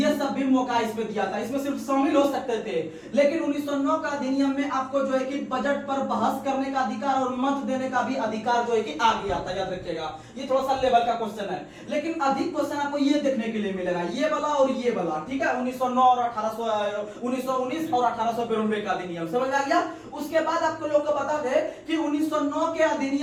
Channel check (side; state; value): both; identical; correlation 1.00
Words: सब भी मौका इसमें दिया था, इसमें सिर्फ शामिल हो सकते थे। लेकिन 1909 का अधिनियम में आपको जो है कि बजट पर बहस करने का अधिकार और मत देने का भी अधिकार जो है कि आ गया था। याद रखिएगा, ये थोड़ा सा लेवल का क्वेश्चन है, लेकिन अधिक क्वेश्चन आपको ये देखने के लिए मिलेगा, ये वाला और ये वाला। ठीक है, 1909 और 1919 और 1892 का अधिनियम समझ आ गया। उसके बाद आपको लोग को बता दे कि 1909 के